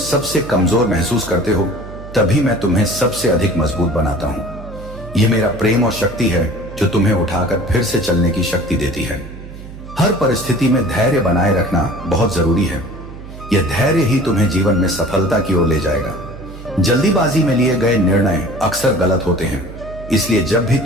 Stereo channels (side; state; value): right; noise; hum, 14 dB below the sound